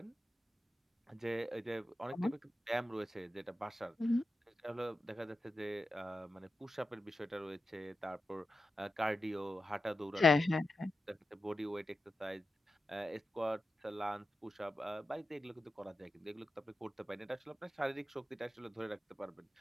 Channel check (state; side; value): normal; both; correlation 0.90